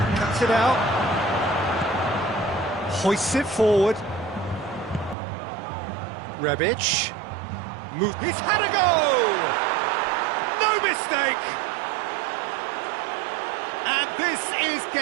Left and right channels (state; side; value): drops out; left; at 5.2 s